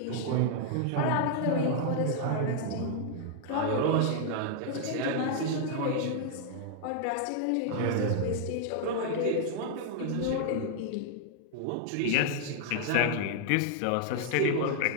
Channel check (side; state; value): both; different; correlation 0.00